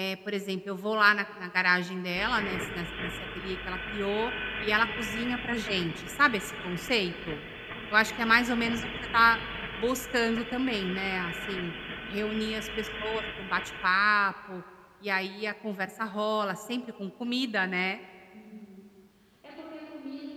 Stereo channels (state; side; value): identical; both; correlation 1.00